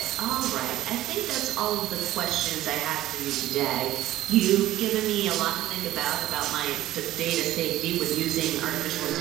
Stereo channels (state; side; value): quieter; left; 14.6 dB